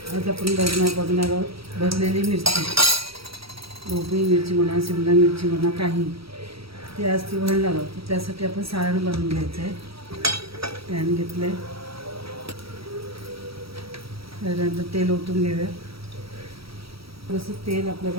आज आपण बघणार आहोत भरलेली मिरची, ढोबळी मिरची म्हणा, शिमला मिरची म्हणा, काही ते आज ती भरणार आहोत. त्यासाठी आपण सारण बनवून घ्यायचं आहे. पॅन घेतलं आहे, त्यानंतर तेल ओतून घेऊया. जसं तेल आपलं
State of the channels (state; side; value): late; left; 0.76 ms